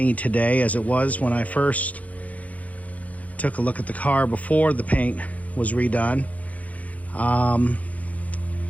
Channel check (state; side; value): late; right; 0.070 ms